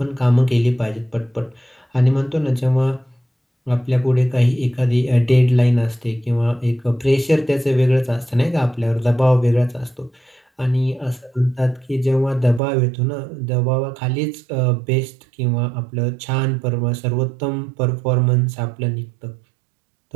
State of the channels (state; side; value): drops out; left; at 12.6 s